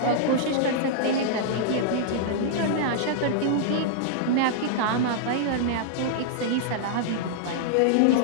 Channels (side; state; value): both; different; correlation -0.01